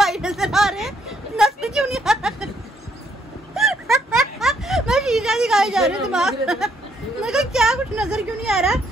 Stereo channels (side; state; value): both; normal; correlation 0.71